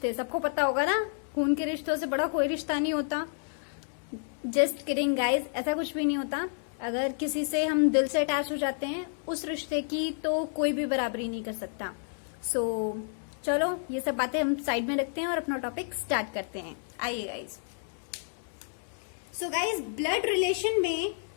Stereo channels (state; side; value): silent; right; 58 dB below the other